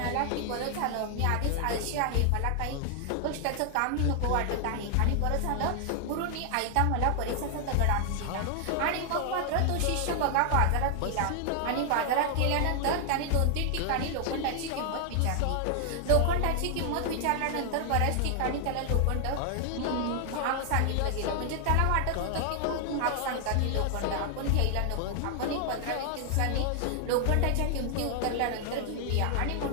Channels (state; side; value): different; both; correlation 0.00